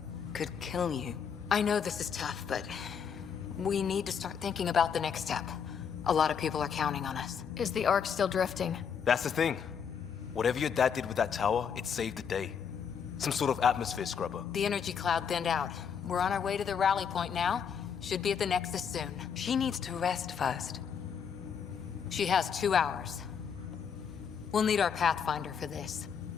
could kill you. I know this is tough, but we need to start thinking about the next step. A lot of people are counting on us. Is the Ark still drifting? That's the thing. Whatever your dad did with that tower, it saved the day. Some sort of atmosphere scrubber. The energy cloud thinned out. We're on our way to the rally point now. Should be at the Nexus soon. She needs to rest first. She has 2 hours. We'll need our Pathfinder for this.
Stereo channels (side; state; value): right; quieter; 7.1 dB